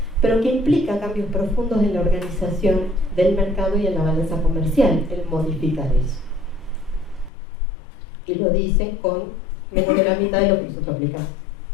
pero que implica cambios profundos en la organización del mercado y en la balanza comercial, el modificar eso. Y lo dicen con menos de la mitad de lo que nosotros aplicamos.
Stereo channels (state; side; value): drops out; right; at 7.3 s